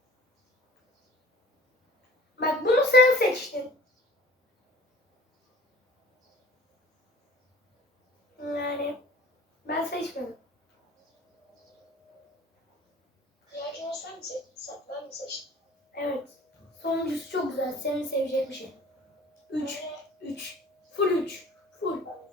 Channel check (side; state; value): both; normal; correlation 0.48